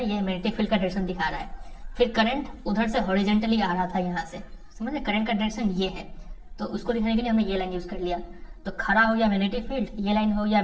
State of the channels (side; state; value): both; identical; correlation 1.00